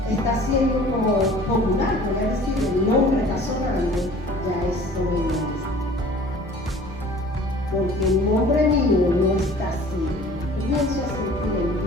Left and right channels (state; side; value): normal; both; correlation 0.47